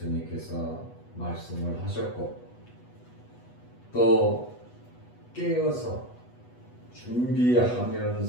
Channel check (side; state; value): right; late; 8.2 ms